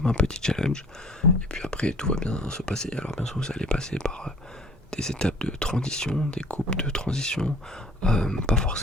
un petit challenge. Et puis après, tout va bien se passer. Alors bien sûr, vous allez passer par des étapes de transition, des coupes de transition, pas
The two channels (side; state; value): both; normal; correlation 0.52